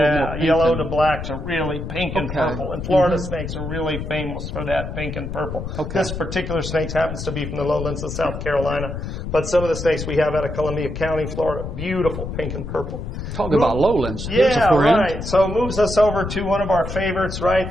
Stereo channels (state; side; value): noise; left; rumble, 6 dB below the sound